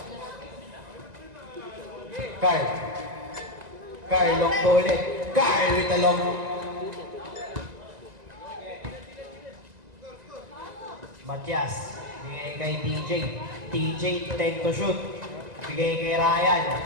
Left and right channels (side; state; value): left; late; 1.9 ms